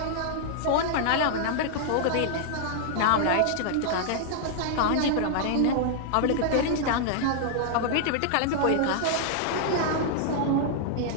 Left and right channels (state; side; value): different; both; correlation -0.01